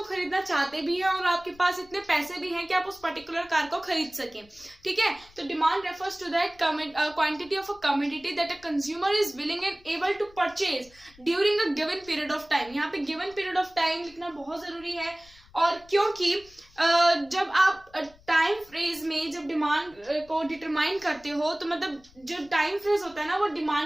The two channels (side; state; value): left; noise; rumble, 26 dB below the sound